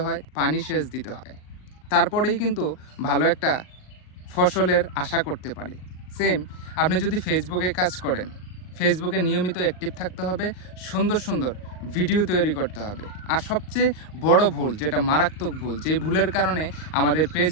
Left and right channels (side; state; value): right; late; 38 ms